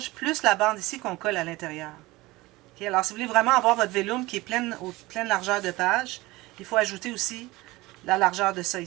plus la bande ici qu'on colle à l'intérieur. Okay? Alors, si vous voulez vraiment avoir votre vélum qui est pleine largeur de page, il faut ajouter aussi la largeur de ça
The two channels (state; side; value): quieter; left; 20.5 dB